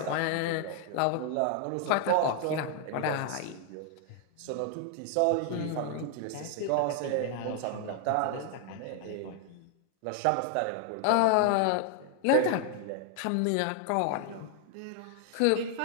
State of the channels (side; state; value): both; different; correlation 0.00